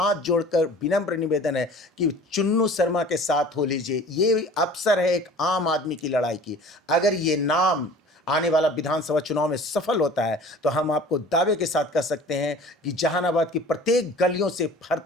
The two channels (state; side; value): normal; both; correlation 0.44